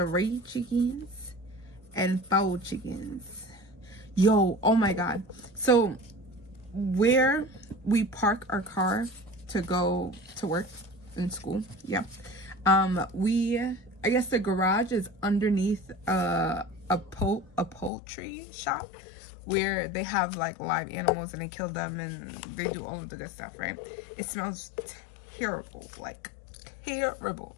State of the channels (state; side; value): drops out; right; at 17.9 s